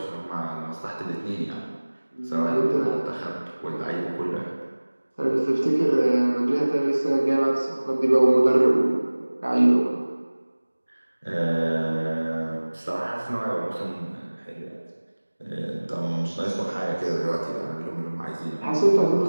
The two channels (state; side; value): inverted; both; correlation -1.00